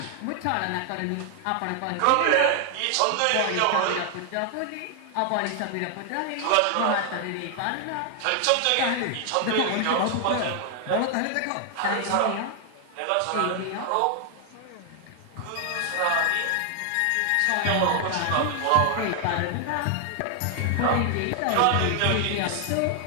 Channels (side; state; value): both; different; correlation 0.00